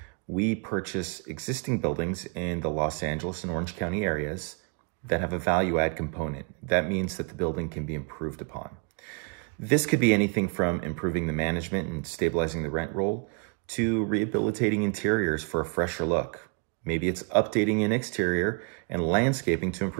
We purchase existing buildings in the Los Angeles and Orange County areas that have a value-add component. That means that the building can be improved upon. This could be anything from improving the management and stabilizing the rent roll to rehabilitating interiors for a fresher look. Maybe it's updating an exterior and landscaping to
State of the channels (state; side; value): quieter; left; 36.4 dB